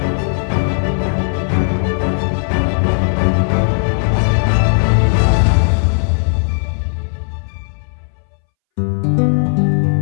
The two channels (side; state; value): right; silent; 66 dB below the other